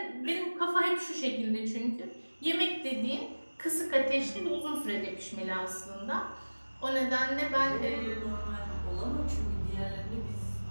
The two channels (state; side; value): inverted; both; correlation -1.00